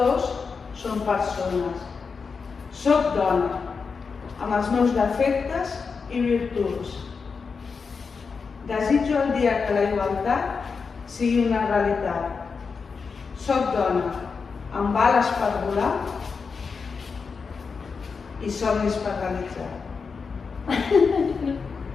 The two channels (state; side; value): quieter; right; 5.2 dB